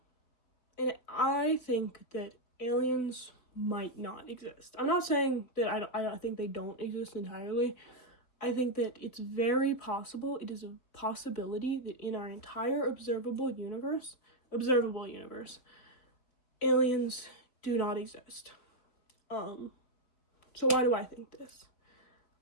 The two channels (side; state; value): right; late; 4.3 ms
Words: And I think that aliens might not exist. I'm not saying that I think they don't exist entirely. I think that it's very possible, it is a possibility that in our entire observable universe, aliens do not exist. So why do I think this?